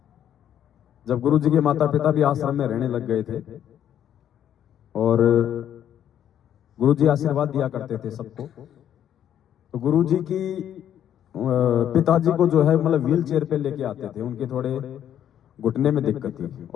जब गुरु जी के माता पिता भी आश्रम में रहने लग गए थे और गुरु जी आशीर्वाद दिया करते थे सबको। तो गुरु जी की पिताजी को जो है मतलब व्हील चेयर पे लेके आते थे, उनके थोड़े घुटने में दिक्कत थी,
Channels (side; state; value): right; quieter; 10.2 dB